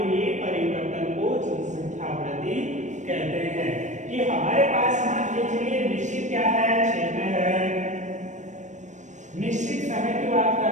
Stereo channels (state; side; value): late; left; 0.35 ms